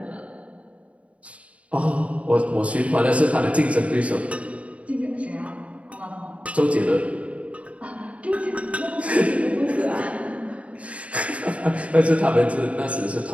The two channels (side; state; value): left; late; 0.065 ms